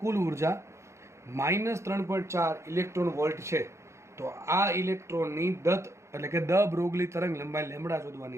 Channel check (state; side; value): late; left; 0.14 ms